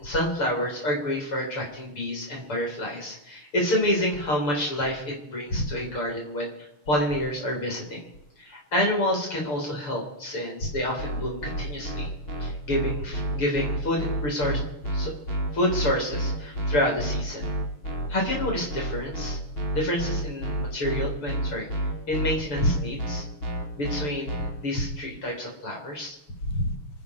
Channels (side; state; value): right; late; 6.8 ms